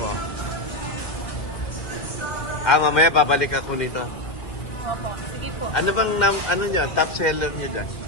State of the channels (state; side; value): late; right; 2.1 ms